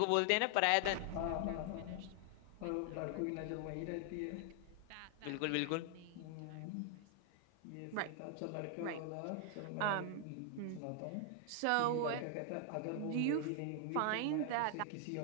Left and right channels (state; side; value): different; both; correlation 0.00